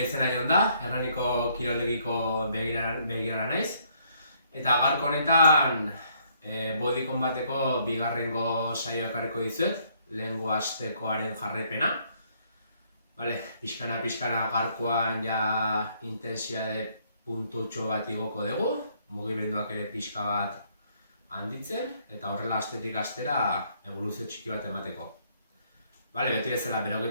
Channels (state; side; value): inverted; both; correlation -0.68